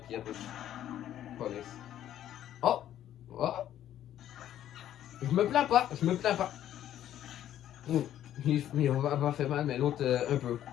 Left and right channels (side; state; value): right; quieter; 11.6 dB